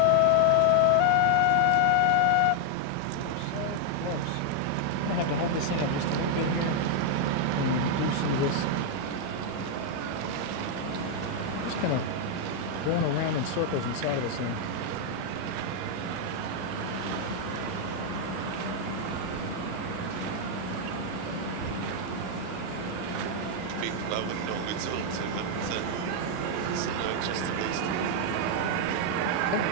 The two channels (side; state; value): both; different; correlation 0.00